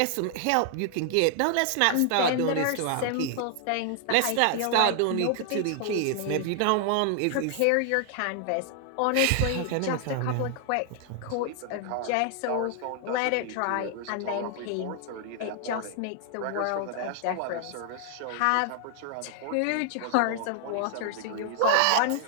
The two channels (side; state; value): both; different; correlation 0.00